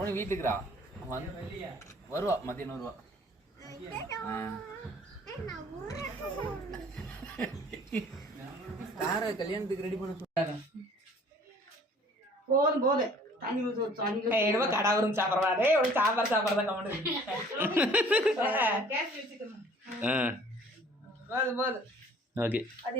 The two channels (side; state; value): both; normal; correlation 0.53